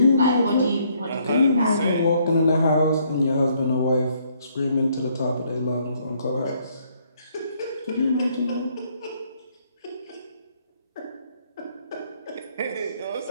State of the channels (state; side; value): inverted; both; correlation -0.68